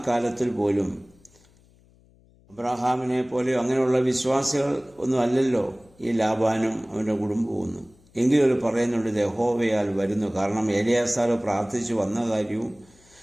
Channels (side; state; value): left; noise; hum, 30 dB below the sound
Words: കാലത്തിൽ പോലും അബ്രഹാമിനെ പോലെ അങ്ങനെയുള്ള വിശ്വാസികൾ ഒന്നും അല്ലല്ലോ ഈ ലാബാനും അവൻ്റെ കുടുംബവും. എങ്കിലും അവർ പറയുന്നുണ്ട് യഹോവയാൽ വരുന്നു. കാരണം എലിയാസാർ പ്രാർത്ഥിച്ചു വന്ന കാര്യവും